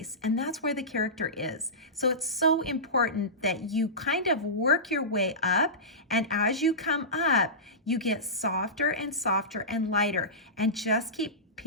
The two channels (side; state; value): both; normal; correlation -0.19